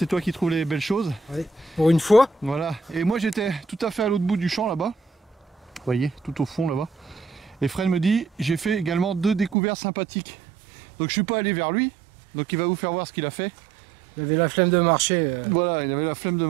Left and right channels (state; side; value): drops out; left; at 9.6 s